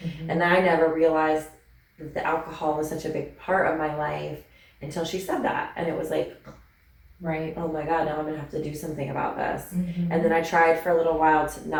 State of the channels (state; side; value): identical; both; correlation 1.00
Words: And I never realized that the alcohol was such a big part of my life until she said that. And it was like, right. Oh my God, now I'm going to have to do something about this. And then I tried for a little while